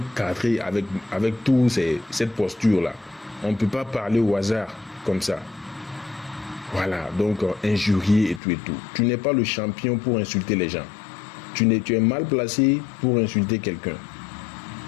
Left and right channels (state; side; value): drops out; right; at 8.4 s